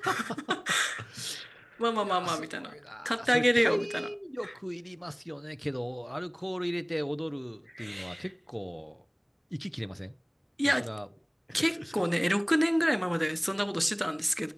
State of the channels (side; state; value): both; identical; correlation 1.00